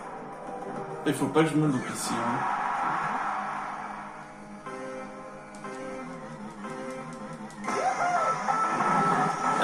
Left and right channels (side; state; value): both; identical; correlation 1.00